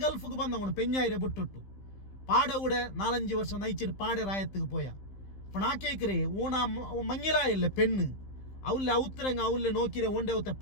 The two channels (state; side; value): late; right; 15 ms